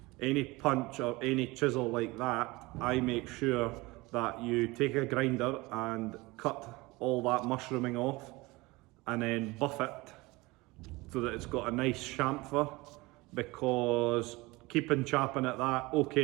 any punch or any chisel like that, I make sure that you take a grinder and cut all that mushrooming off and then buff it so that it's got a nice chamfer, because keeping chapping at that,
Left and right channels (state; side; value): quieter; left; 22.4 dB